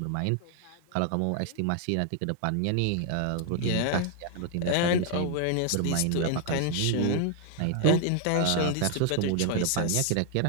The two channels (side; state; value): both; different; correlation 0.00